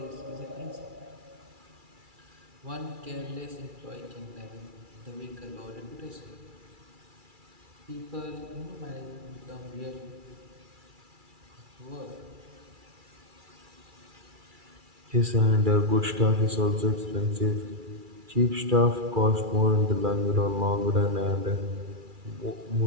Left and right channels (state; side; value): late; left; 2.3 ms